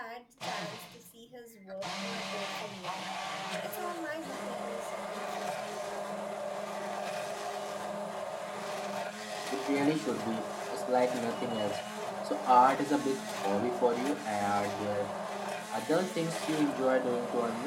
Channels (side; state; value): both; identical; correlation 1.00